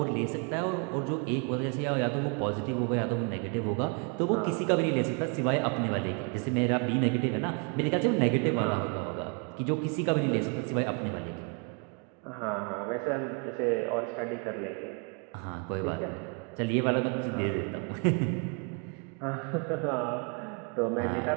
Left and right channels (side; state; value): left; quieter; 35.8 dB